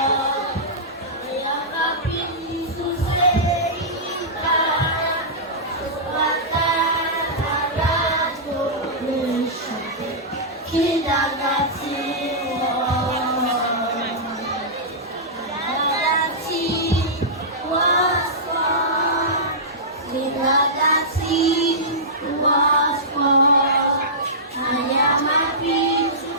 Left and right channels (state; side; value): normal; both; correlation -0.15